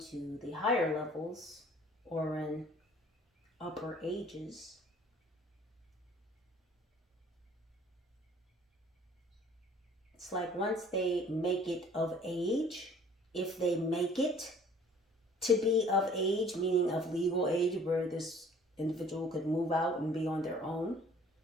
the higher levels or in upper ages, it's like once they make it of age, if they make it to be of age, meaning of legal age, where this individual could move out and be on their own,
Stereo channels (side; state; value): both; normal; correlation 0.53